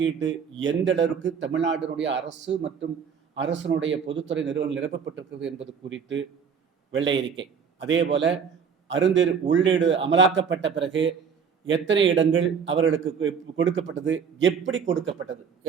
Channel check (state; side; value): quieter; left; 6.6 dB